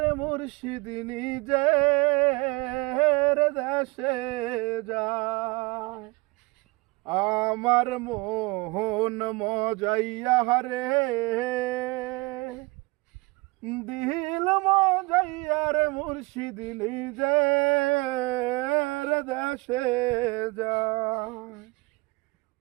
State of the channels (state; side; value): quieter; left; 25.1 dB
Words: মুর্শিদ নিজের দেশে যায়। আমার মোহন মজাইয়া রে, দিল মজাইয়া রে মুর্শিদ নিজের দেশে যায়।